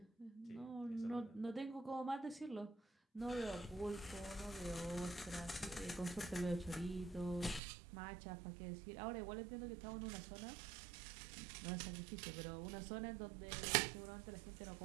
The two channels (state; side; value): drops out; left; at 7.6 s